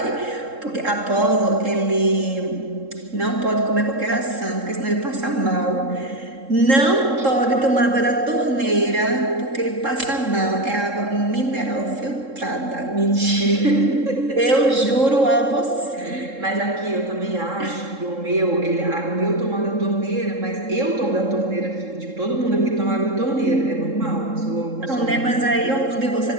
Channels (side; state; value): left; late; 3.7 ms